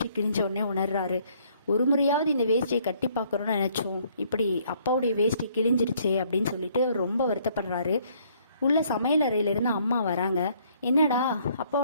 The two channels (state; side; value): inverted; both; correlation -0.64